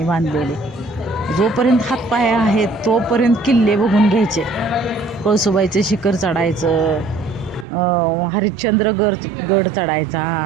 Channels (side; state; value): left; drops out; at 7.7 s